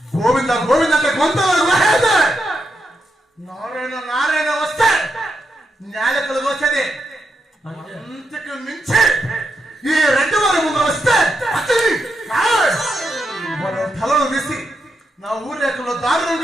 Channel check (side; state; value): both; normal; correlation 0.83